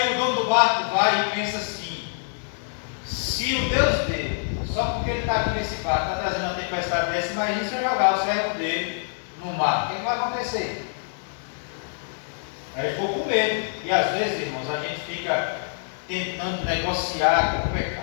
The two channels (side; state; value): right; silent; digital silence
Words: o dono do barco vai e pensa assim: se o Deus dele, só porque ele está aqui nesse barco, está trazendo uma tempestade dessa, imagine se eu jogar o servo dele no mar, o que vai acontecer? Aí ele ficou com medo. E às vezes, irmãos, a gente fica tentando negociar com o